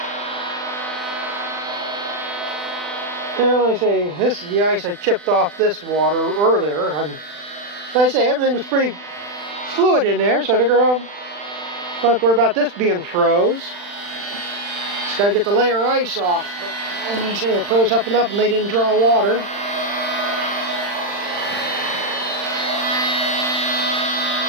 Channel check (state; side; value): late; left; 40 ms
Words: Well, like I say, this is the ice I chipped off this water earlier. And like I say, everything was pretty fluid in there, so I figure I don't have to worry about this being froze. Just gotta get the layer of ice off. But like I say, it froze up enough and they didn't draw water.